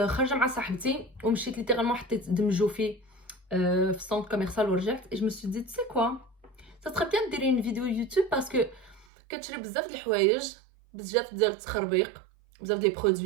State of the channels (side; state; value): left; drops out; at 9.1 s